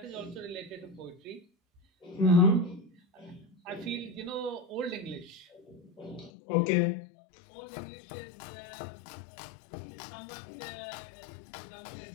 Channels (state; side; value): drops out; right; at 6.3 s